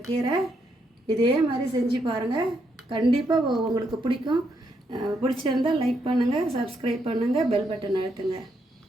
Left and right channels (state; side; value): normal; both; correlation 0.78